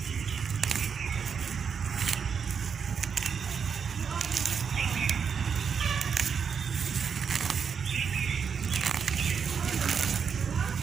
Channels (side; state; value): left; quieter; 6.6 dB